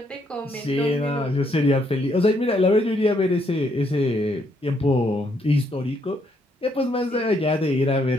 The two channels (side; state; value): both; normal; correlation 0.72